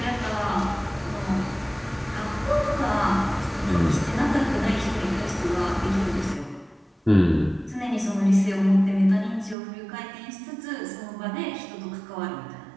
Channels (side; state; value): left; drops out; at 9.6 s